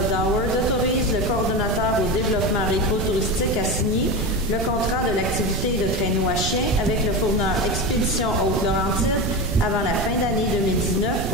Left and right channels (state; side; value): noise; right; rumble, 3 dB below the sound